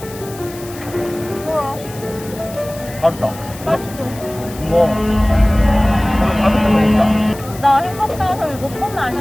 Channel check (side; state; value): left; noise; hiss, 17 dB below the sound